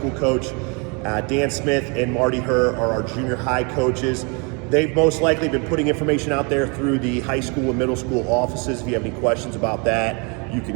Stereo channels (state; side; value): quieter; left; 32.4 dB